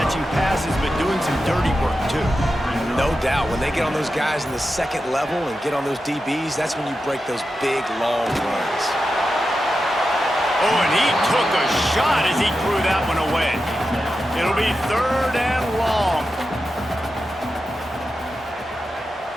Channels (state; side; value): normal; both; correlation 0.90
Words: passes, but doing some dirty work, too. No doubt. When they get on those guys in the second level and get on those DBs, that's when you break those big, long runs. Oh, and he took a shot as he threw that one away. It'll be 3rd and long.